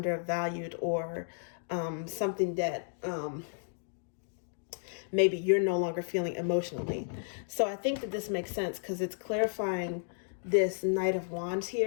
or something that maybe you're no longer feeling emotionally. So I think that this makes sense because it's clarifying this Knight of Wands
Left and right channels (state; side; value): silent; right; digital silence